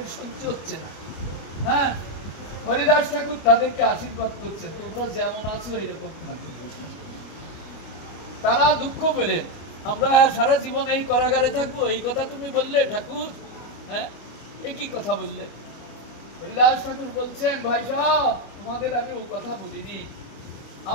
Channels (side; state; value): right; late; 25 ms